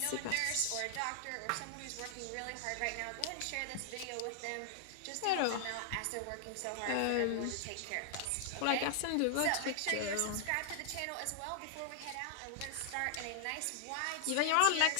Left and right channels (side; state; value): both; different; correlation 0.00